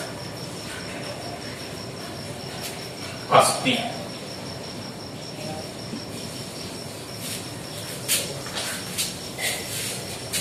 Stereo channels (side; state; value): both; identical; correlation 1.00